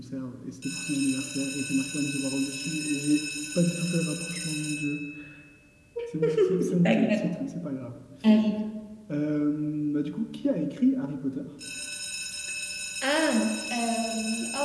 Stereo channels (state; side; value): identical; both; correlation 1.00